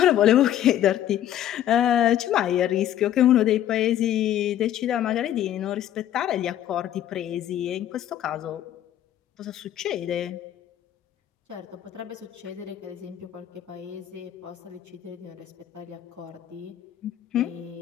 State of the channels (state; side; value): quieter; right; 11.5 dB